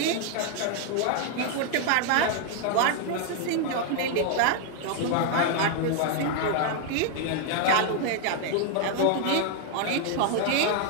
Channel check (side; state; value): both; different; correlation 0.00